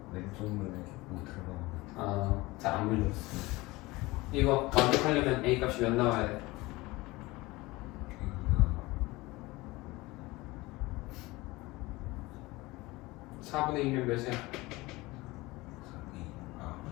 왼쪽 눈에 못 들어가. 잘 안 보이었어. 이거 완벽하려면 a 값이 몇 나와야 돼? A가 4분의 1이면 몇이야?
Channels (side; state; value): right; quieter; 21.2 dB